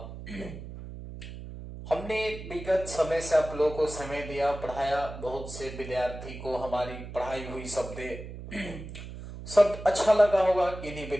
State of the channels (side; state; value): right; noise; hum, 11 dB below the sound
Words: हमने विगत समय से आप लोगों को समय दिया, पढ़ाया, बहुत से विद्यार्थी को हमारी पढ़ाई हुई शब्द सब अच्छा लगा होगा। किन्हीं